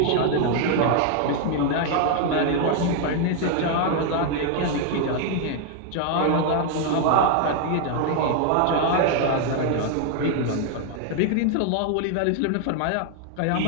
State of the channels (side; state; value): both; different; correlation 0.00